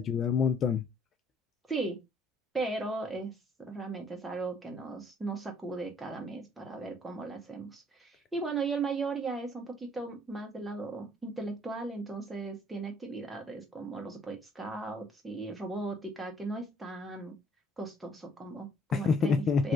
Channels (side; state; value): both; normal; correlation 0.63